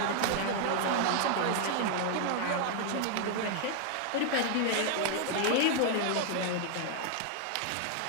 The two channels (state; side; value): different; both; correlation 0.00